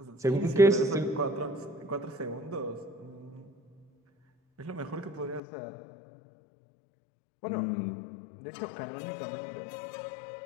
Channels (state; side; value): drops out; right; at 5.4 s